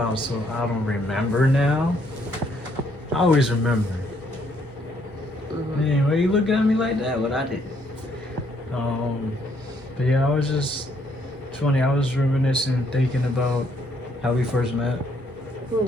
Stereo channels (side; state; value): both; normal; correlation 0.69